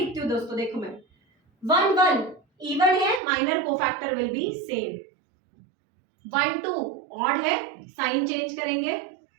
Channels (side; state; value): left; drops out; at 3.2 s